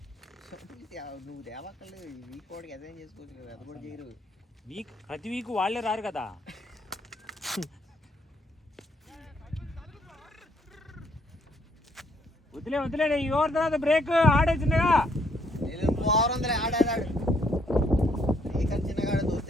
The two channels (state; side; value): normal; both; correlation 0.69